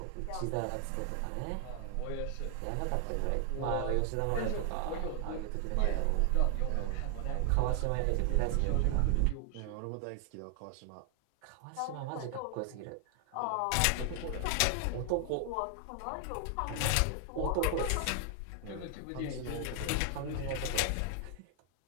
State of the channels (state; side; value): different; both; correlation 0.00